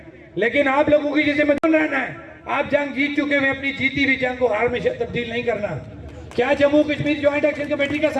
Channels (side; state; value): both; identical; correlation 1.00